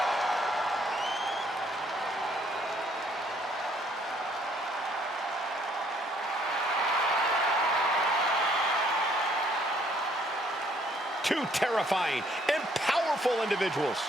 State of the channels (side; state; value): both; normal; correlation 0.65